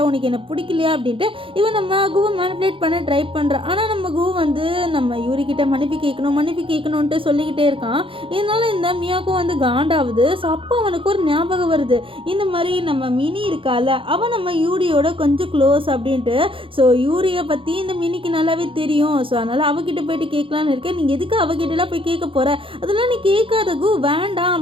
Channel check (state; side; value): late; left; 0.25 ms